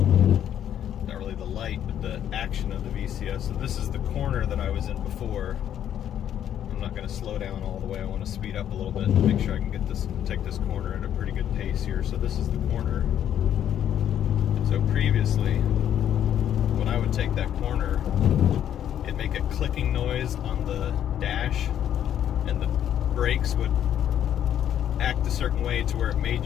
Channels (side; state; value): right; quieter; 10.2 dB